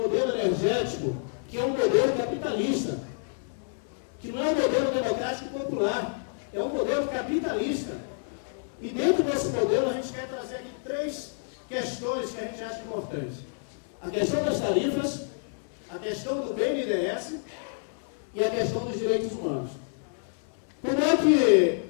energético que é um modelo capitalista, que não é um modelo democrático popular, é um modelo capitalista. E dentro desse modelo a gente quer trazer aqui 3 questões que a gente acha importantes. A questão das tarifas, a questão do BNDES e a questão dos direitos humanos. Como é que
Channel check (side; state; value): right; silent; digital silence